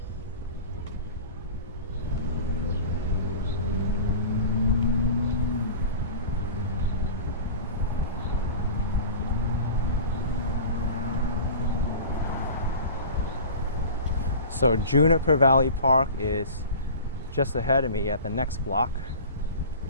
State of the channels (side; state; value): both; inverted; correlation -0.37